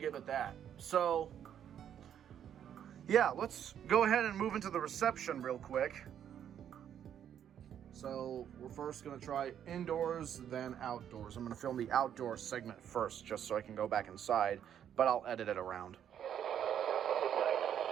it that. So, yeah, let's go ahead and move into the reception real quick. So we're first gonna try indoors, then outdoors. I'm gonna film the outdoor segment first, just so I can go back inside, but I'll edit it around.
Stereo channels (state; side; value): quieter; left; 9.4 dB